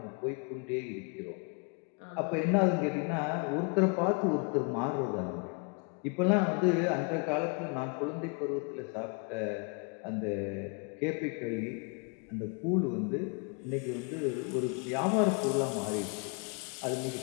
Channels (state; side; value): quieter; right; 35.8 dB